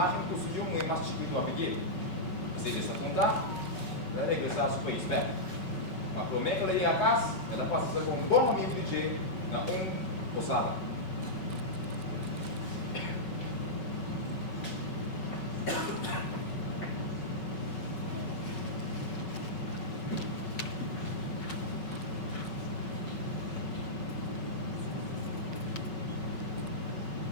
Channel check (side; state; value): right; late; 5.3 ms